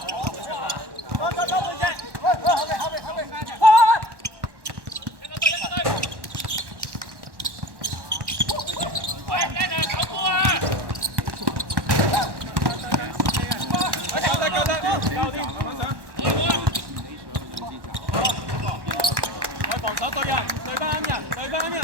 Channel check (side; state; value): left; late; 1.1 ms